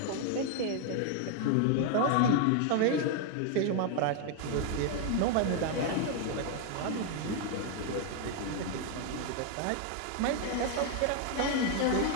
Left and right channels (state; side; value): different; both; correlation 0.00